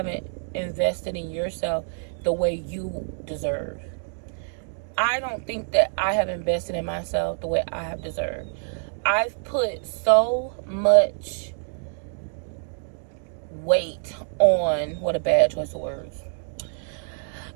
invested in yourself the way you deserve. I don't think that I have invested in myself the way I have deserved. I've put so much weight on, what a bad choice of words.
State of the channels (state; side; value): silent; left; 61 dB below the other